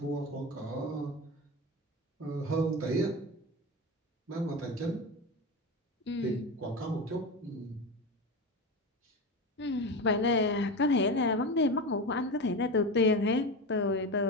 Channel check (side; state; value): both; normal; correlation 0.22